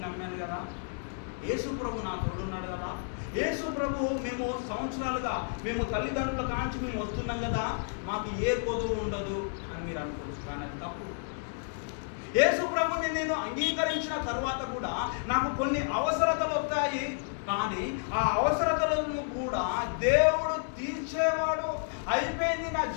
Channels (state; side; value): silent; right; digital silence